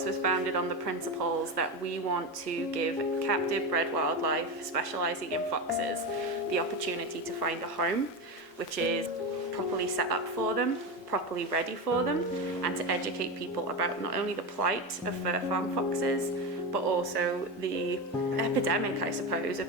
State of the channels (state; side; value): normal; both; correlation 0.18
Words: was founded on the principles that we want to give captive bred wildlife specializing in foxes the opportunity to find a home, which is properly set up for them, properly ready for them, and to educate people about not only the plight of fur farm foxes, but also the epidemic, I suppose,